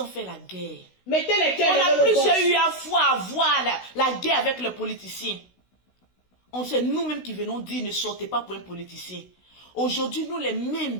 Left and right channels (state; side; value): late; right; 16 ms